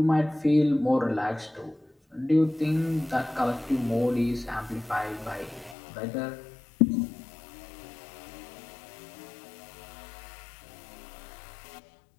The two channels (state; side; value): drops out; right; at 5.8 s